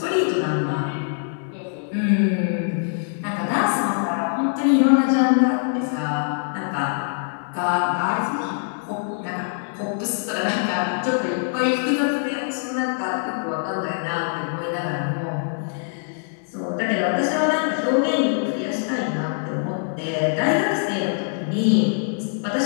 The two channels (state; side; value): silent; right; digital silence